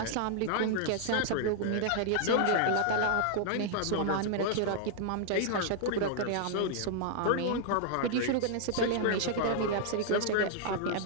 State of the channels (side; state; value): both; different; correlation 0.00